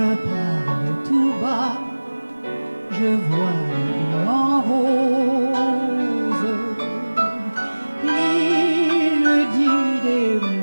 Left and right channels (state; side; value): inverted; both; correlation -1.00